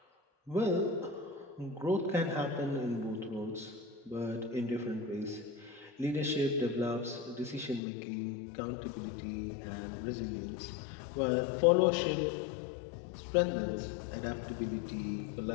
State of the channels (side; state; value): right; drops out; at 7.8 s